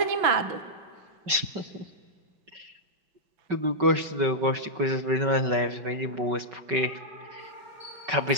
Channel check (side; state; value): left; late; 5.3 ms